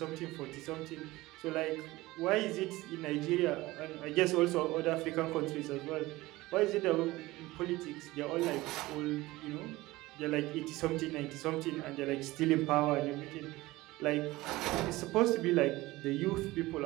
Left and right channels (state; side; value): quieter; left; 19.1 dB